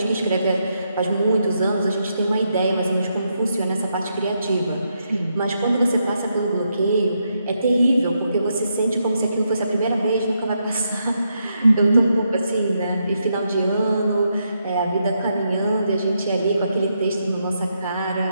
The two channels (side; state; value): both; inverted; correlation -0.80